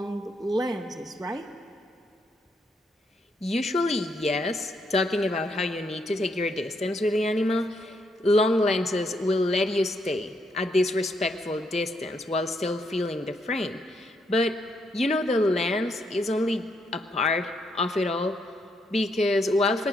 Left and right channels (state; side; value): normal; both; correlation 0.76